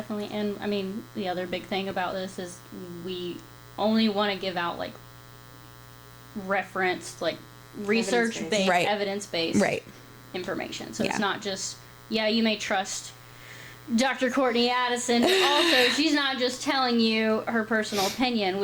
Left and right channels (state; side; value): identical; both; correlation 1.00